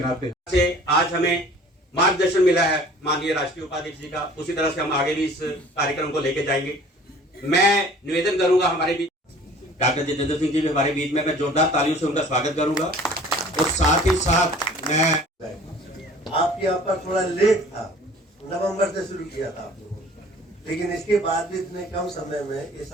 से आज हमें मार्गदर्शन मिला है माननीय राष्ट्रीय उपाध्यक्ष जी का। उसी तरह से हम आगे भी इस कार्यक्रम को लेकर जाएंगे। मैं निवेदन करूंगा हमारे बीच डॉक्टर जितेंद्र सिंह जी भी हमारे बीच में, मैं जोरदार तालियों से उनका स्वागत करूंगा। और साथ ही साथ मैं आपके यहाँ पर थोड़ा लेट था, नवंबर से शुरू किया था आप लोगों ने, लेकिन इसके बाद भी इतने कम समय में ये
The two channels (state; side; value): normal; both; correlation 0.49